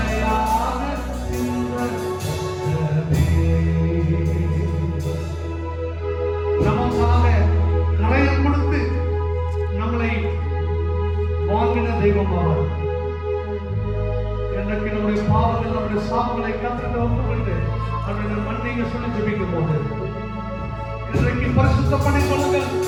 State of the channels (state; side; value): identical; both; correlation 1.00